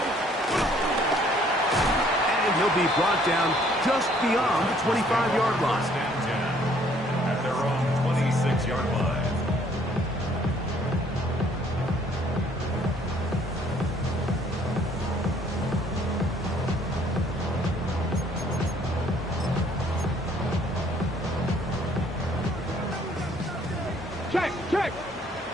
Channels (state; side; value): normal; both; correlation 0.62